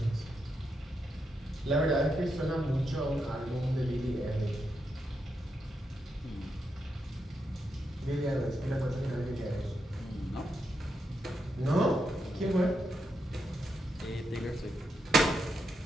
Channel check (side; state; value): both; normal; correlation 0.83